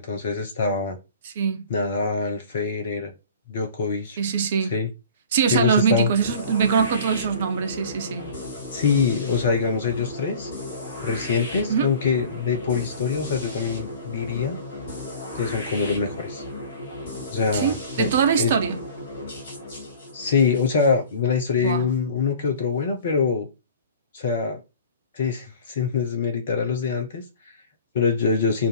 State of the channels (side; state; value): both; inverted; correlation -0.43